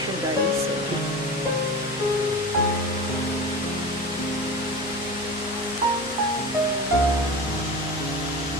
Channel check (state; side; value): normal; both; correlation 0.30